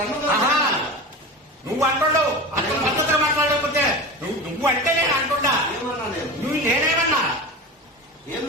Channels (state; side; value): normal; both; correlation 0.29